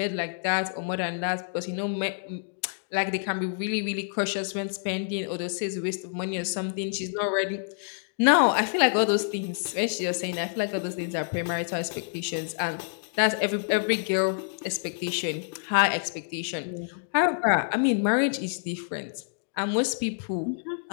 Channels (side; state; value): right; silent; digital silence